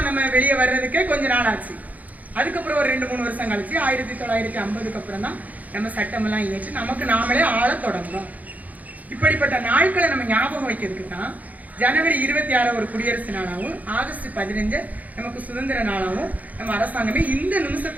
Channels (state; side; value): late; left; 0.077 ms